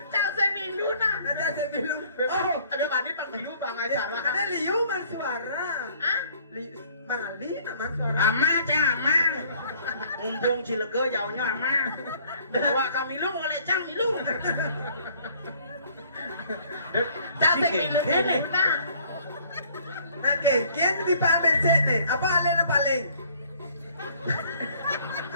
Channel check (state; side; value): inverted; both; correlation -0.58